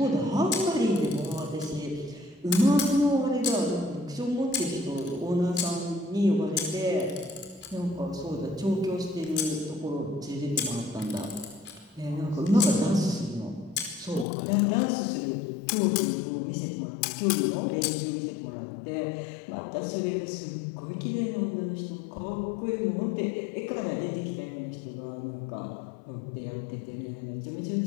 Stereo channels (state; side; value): drops out; right; at 14.2 s